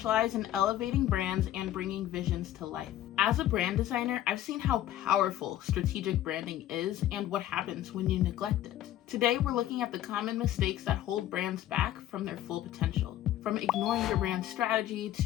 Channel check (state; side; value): quieter; right; 12.8 dB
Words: in elevating brands and bringing visions to life. As a brand designer, I've seen how powerful strategic branding is and what happens when you neglect it. Today, we're looking at the common mistakes that hold brands back from their full potential. From ignoring your brand strategy,